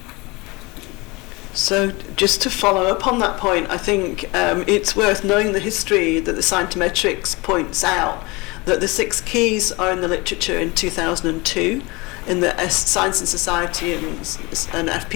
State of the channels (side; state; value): right; quieter; 25.0 dB